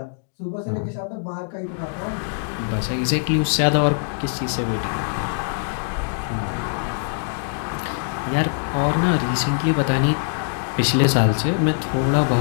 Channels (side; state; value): right; silent; digital silence